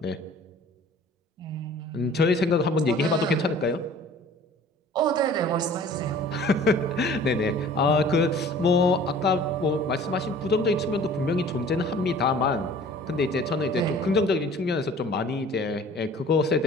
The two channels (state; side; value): normal; both; correlation 0.48